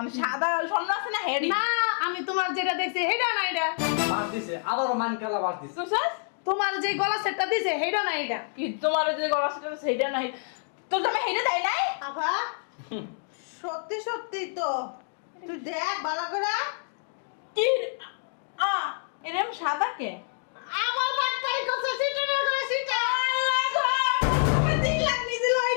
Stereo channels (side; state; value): right; silent; digital silence